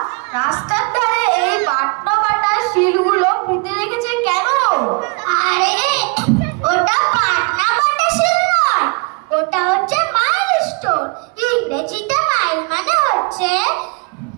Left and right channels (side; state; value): left; quieter; 32.9 dB